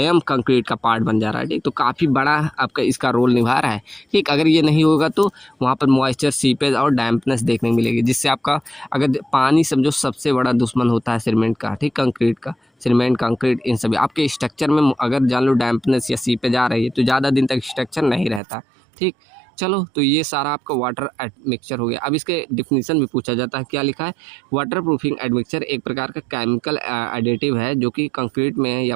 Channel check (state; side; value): drops out; left; at 18.4 s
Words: कंक्रीट का पार्ट बन जा रहा है। ठीक, तो काफ़ी बड़ा आपका इसका रोल निभा रहा है। ठीक, अगर ये नहीं होगा तो वहाँ पर मॉइस्चर, सीपेज और डैम्पनेस देखने को मिलेगी, जिससे आपका, अगर पानी समझो सबसे बड़ा दुश्मन होता है सीमेंट का, ठीक, कंक्रीट का, सीमेंट, कंक्रीट, इन सभी आपके स्ट्रक्चर में अगर जान लो डैम्पनेस या सीपेज आ रही है तो ज़्यादा दिन तक स्ट्रक्चर नहीं रहता। ठीक, चलो, तो ये सारा आपका वाटर एडमिक्सचर हो गया। अब इसके डिफिनीशन भी पूछा जाता है, क्या लिखा है? वाटर प्रूफिंग एडमिक्सचर एक प्रकार का केमिकल एडिटिव है जो कि कंक्रीट में या